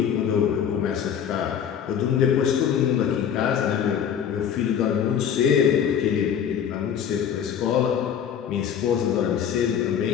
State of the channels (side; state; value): right; quieter; 8.5 dB